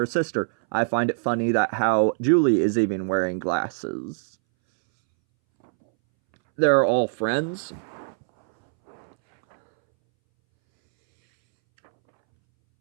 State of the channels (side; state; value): left; silent; 63 dB below the other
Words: sister. I find it funny that how Julie is even wearing glasses. They're all friends.